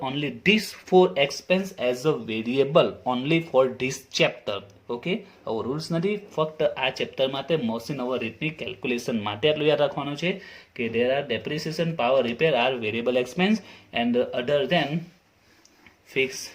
only this 4 expense as a variable only for this chapter. Okay, આવો રૂલ્સ નથી, ફક્ત આ ચેપ્ટર માટે મશીન ઓવર રેટની કેલ્ક્યુલેશન માટે આટલું યાદ રાખવાનું છે કે there are depreciation, power repair are variable expense and other than fix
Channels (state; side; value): identical; both; correlation 1.00